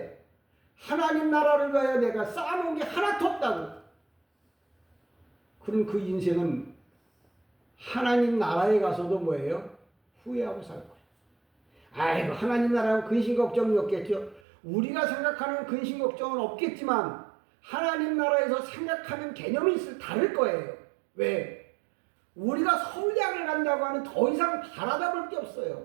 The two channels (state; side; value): drops out; left; at 14.4 s